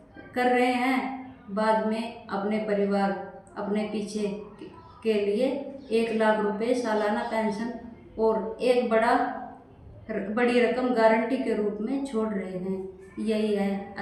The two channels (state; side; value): identical; both; correlation 1.00